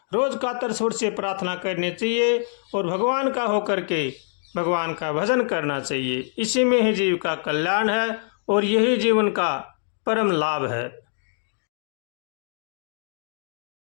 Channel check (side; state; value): right; silent; digital silence